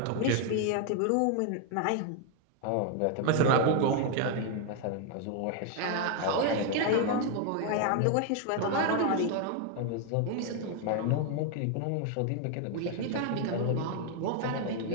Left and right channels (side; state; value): both; different; correlation 0.00